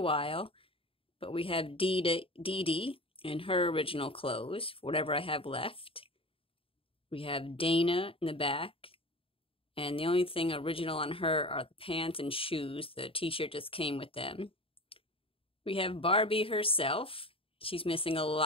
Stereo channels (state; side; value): late; right; 0.27 ms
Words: while. But we have Dee Dee in her original clothes, whatever I have left. We have Dana in the back. And the only thing original on her are the pants and shoes. The t-shirt just came with them. We have Barbie herself. She's missing a